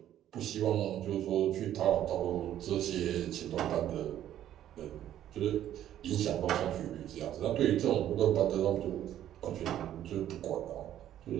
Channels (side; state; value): left; quieter; 11.6 dB